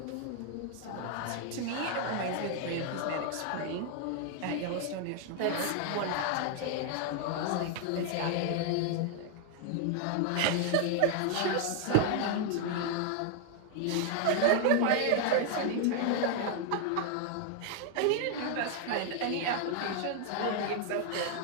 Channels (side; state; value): both; different; correlation 0.00